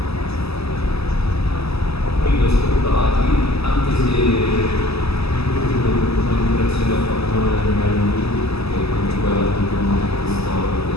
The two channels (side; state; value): right; late; 0.79 ms